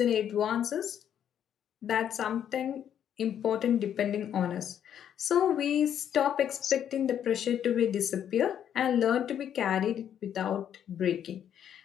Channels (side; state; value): right; quieter; 9.5 dB